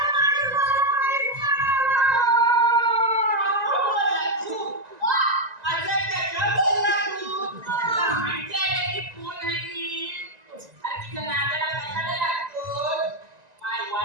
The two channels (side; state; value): left; late; 1.9 ms